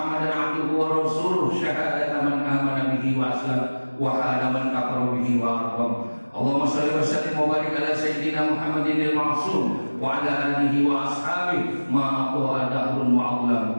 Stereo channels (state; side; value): inverted; both; correlation -1.00